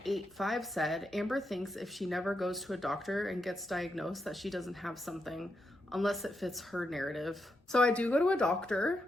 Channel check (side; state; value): both; normal; correlation 0.83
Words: said, Amber thinks if she never goes to a doctor and gets diagnosed that she doesn't have something unless it fits her narrative. So I do go to a